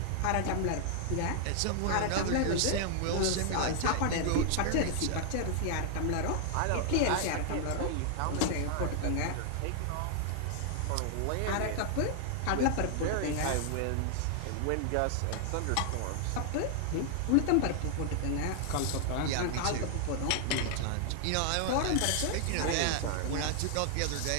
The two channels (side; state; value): both; different; correlation 0.00